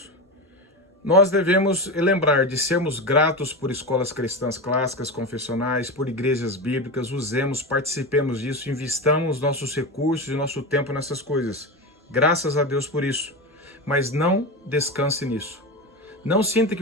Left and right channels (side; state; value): both; normal; correlation 0.20